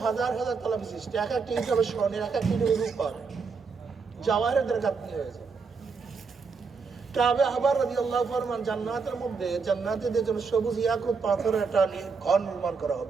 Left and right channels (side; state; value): left; quieter; 5.0 dB